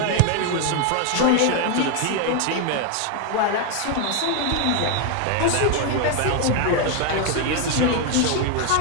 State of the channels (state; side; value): different; both; correlation 0.01